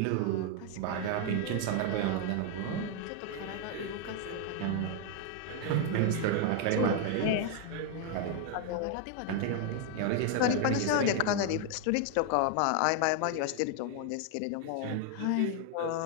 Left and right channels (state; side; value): different; both; correlation 0.00